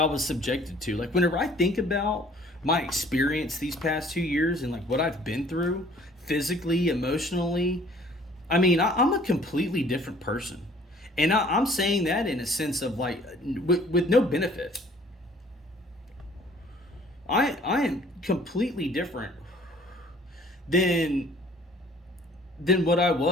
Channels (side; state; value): both; normal; correlation 0.54